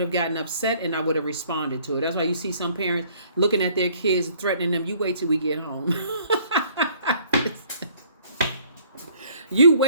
have gotten upset and I would have responded to it. That's why you see some parents looking at their kids, threatening them. You wait till we get home. You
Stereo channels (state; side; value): inverted; both; correlation -0.59